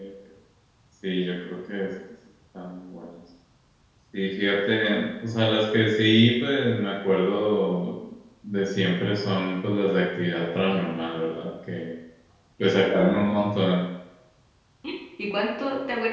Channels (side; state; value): both; identical; correlation 1.00